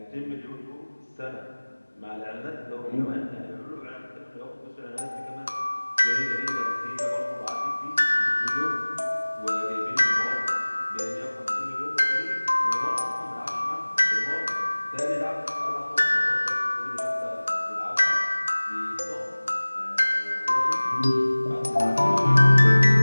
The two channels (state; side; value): inverted; both; correlation -1.00